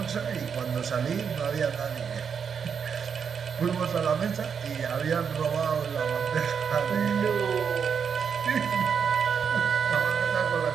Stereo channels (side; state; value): left; quieter; 6.8 dB